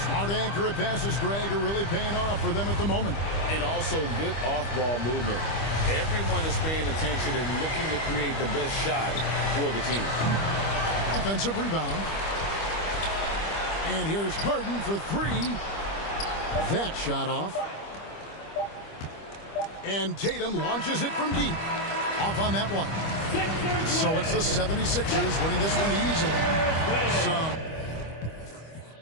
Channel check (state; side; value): late; right; 25 ms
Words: Smart accurate passes, Greg, are really paying off for them at the moment. And also good off-ball movement. Everyone is paying attention and looking to create the best shot for the team. Offensive rebound. And here's Harden for 3. That shot off. And Tatum launches it from deep. Off on that one. So it's the 76ers winning this one easily.